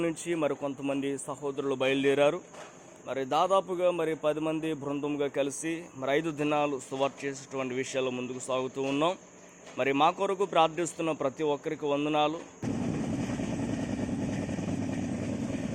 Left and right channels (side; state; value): both; identical; correlation 1.00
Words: నుంచి కొంతమంది సహోదరులు బయలుదేరారు. దాదాపుగా 10 మంది బృందంగా కలిసి 5 దినాలు సువార్త చేసేటువంటి విషయాల్లో ముందుకు సాగుతూ ఉన్నాం. మా కొరకు ప్రార్థిస్తున్న ప్రతి ఒక్కరికి వందనాలు.